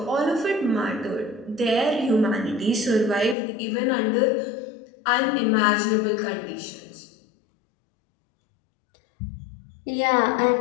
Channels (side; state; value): right; drops out; at 3.4 s